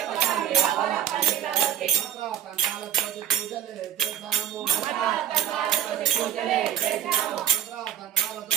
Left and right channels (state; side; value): quieter; left; 10.5 dB